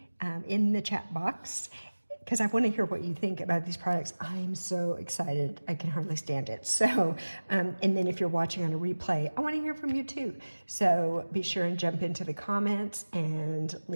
in the chat box, because I want to hear what you think about these products. I'm so excited. I can hardly stand it. So, and then if you're watching on a replay, I want to hear from you too. So be sure and jump into the comments and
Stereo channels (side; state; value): both; inverted; correlation -1.00